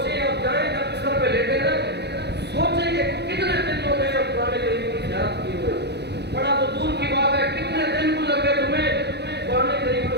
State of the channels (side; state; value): left; late; 0.49 ms